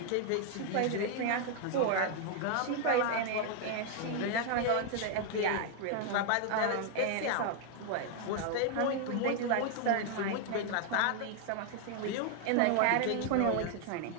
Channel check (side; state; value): both; different; correlation 0.00